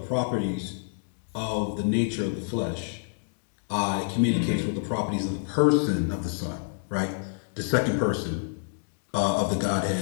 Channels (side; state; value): right; silent; digital silence